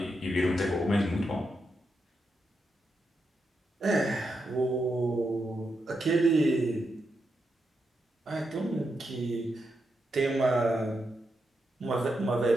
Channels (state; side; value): normal; both; correlation 0.85